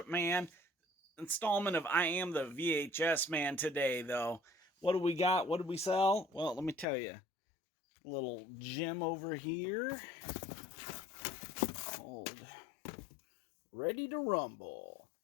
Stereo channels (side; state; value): right; drops out; at 6.9 s